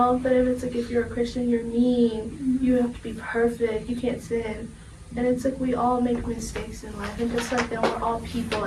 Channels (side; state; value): both; identical; correlation 1.00